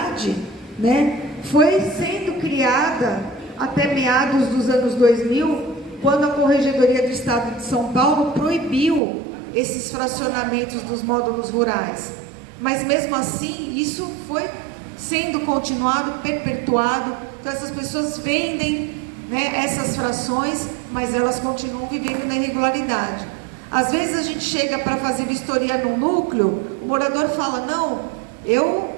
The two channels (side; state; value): left; drops out; at 9.0 s